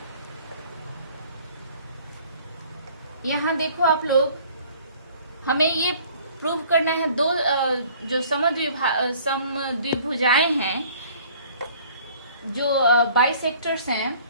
यहां देखो आप लोग, हमें ये प्रूव करना है दो जो समद्विभुजाएं हैं, जो बाइसेक्टर्स हैं,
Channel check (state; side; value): inverted; both; correlation -0.53